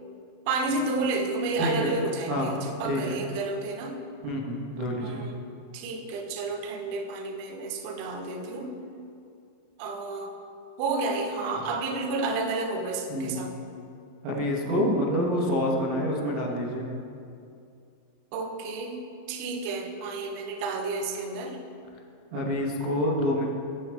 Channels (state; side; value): late; left; 35 ms